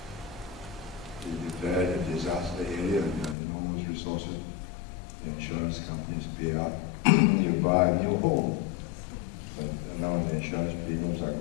we declared a disaster area and enormous resources. The insurance companies pay out. You buy a new home. And now the insurance premiums are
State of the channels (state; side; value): drops out; right; at 3.4 s